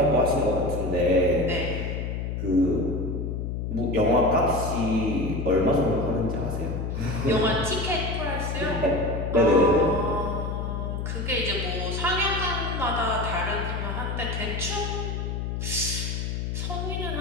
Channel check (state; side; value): noise; left; hum, 3 dB below the sound